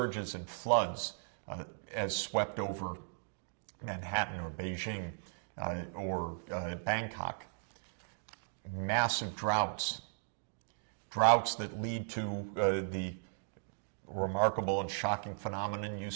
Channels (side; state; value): left; silent; digital silence